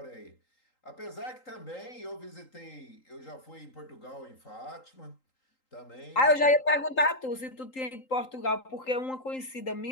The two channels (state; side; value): late; right; 3.8 ms